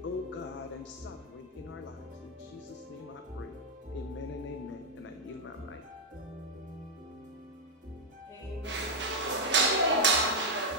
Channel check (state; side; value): normal; both; correlation -0.01